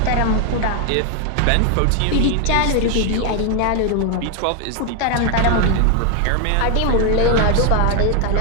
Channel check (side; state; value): both; different; correlation 0.00